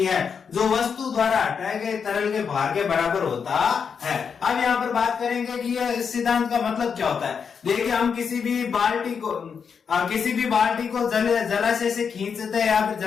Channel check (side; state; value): right; quieter; 6.5 dB